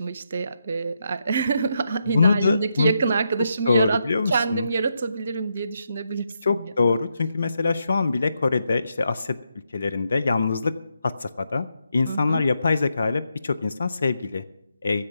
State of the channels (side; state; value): both; inverted; correlation -0.82